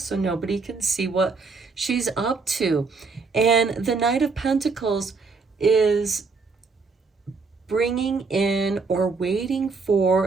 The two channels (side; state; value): left; quieter; 4.4 dB